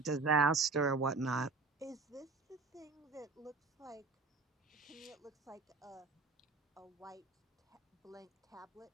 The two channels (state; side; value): quieter; left; 4.1 dB